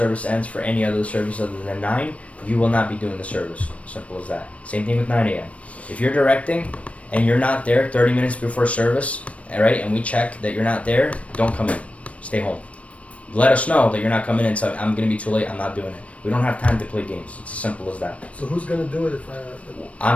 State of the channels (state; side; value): late; right; 0.064 ms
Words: ends for any other service other than 9, you will not be doing the service. Simple as that. Same thing with 9 a.m. If you're directing and you're not there 30 minutes before service, all right, and we check that you're not there, don't come in. Stay home. Let us know that you're not coming in, so I'm going to be too late, I'm not doing it. We don't have time to play games. It's as simple as that. So who's gonna do it if